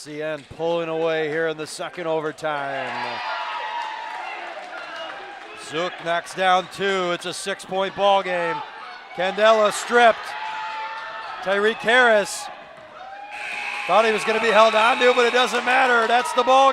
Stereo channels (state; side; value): identical; both; correlation 1.00